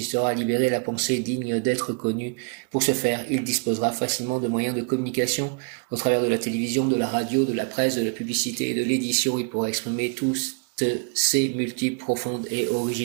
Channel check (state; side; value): quieter; left; 36.4 dB